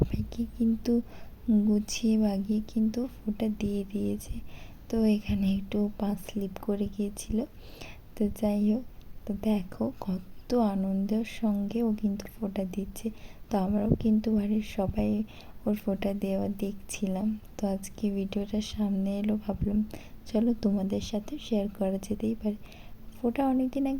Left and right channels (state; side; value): identical; both; correlation 1.00